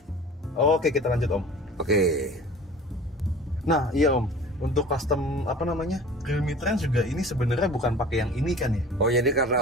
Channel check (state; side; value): normal; both; correlation 0.42